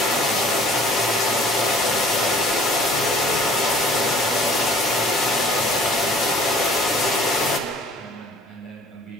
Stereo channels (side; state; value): both; normal; correlation 0.51